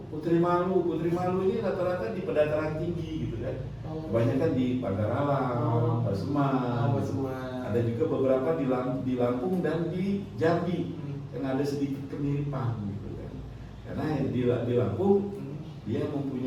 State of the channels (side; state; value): both; identical; correlation 1.00